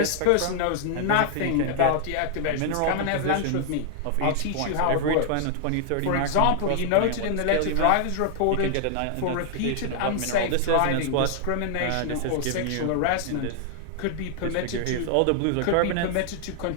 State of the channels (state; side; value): different; both; correlation -0.01